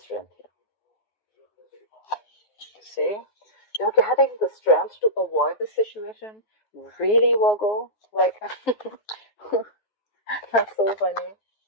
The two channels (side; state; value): right; late; 9.6 ms